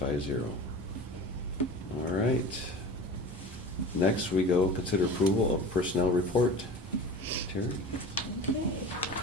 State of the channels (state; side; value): normal; both; correlation 0.35